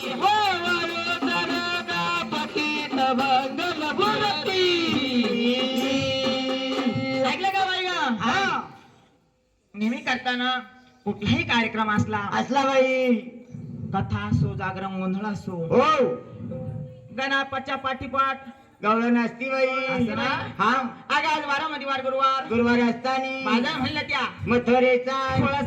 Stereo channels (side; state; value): both; identical; correlation 1.00